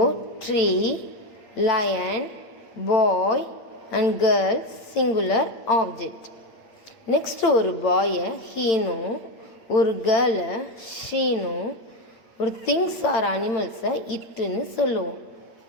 tree, lion, boy and girl singular object. Next ஒரு பாயை ஹீனும், ஒரு கேர்ளை ஷீனும், ஒரு திங்ஸ் ஆர் அனிமல்ஸை இட்டுன்னு சொல்லுவோம்.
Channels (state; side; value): late; right; 8.6 ms